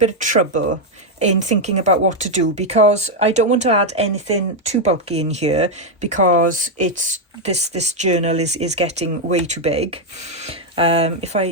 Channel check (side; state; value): both; normal; correlation 0.01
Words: of trouble in thinking about what to do, because I don't want to add anything too bulky in here, because it's this journal is getting way too big. If